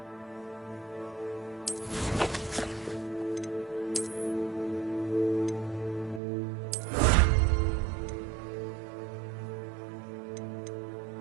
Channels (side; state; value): left; drops out; at 6.2 s